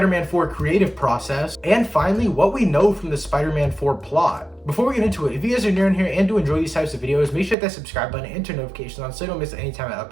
4 creative process, and finally, what we know from the Spider-Man 4 plot. Before we get into it, if you guys are new in here and do enjoy these types of videos, make sure to hit that subscribe button and turn notifications on so you don't miss any time I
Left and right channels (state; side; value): drops out; left; at 7.6 s